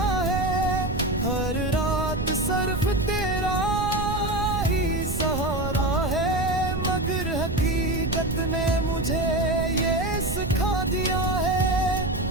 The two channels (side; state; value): right; noise; rumble, 4 dB below the sound